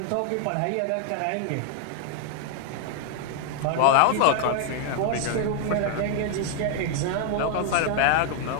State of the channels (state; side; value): different; both; correlation 0.00